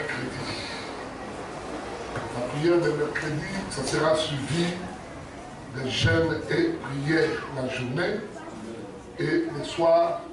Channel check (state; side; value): identical; both; correlation 1.00